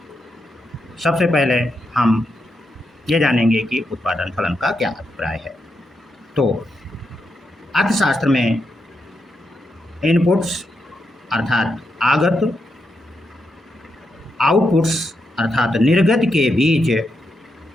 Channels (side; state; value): both; normal; correlation 0.83